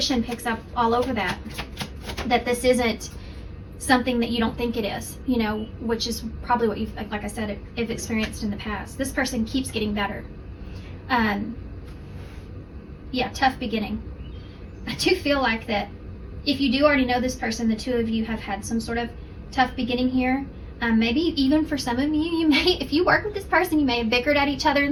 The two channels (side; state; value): both; identical; correlation 1.00